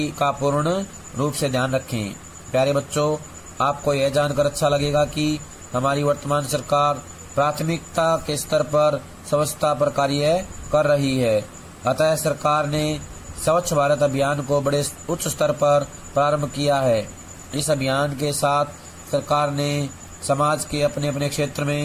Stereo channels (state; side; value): identical; both; correlation 1.00